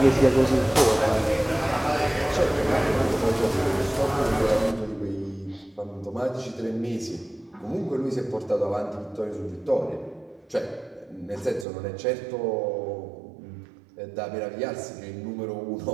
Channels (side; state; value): left; drops out; at 11.7 s